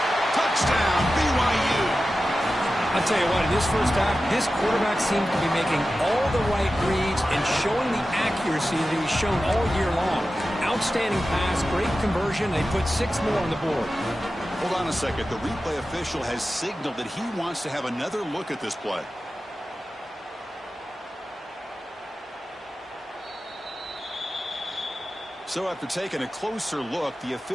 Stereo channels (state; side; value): normal; both; correlation 0.94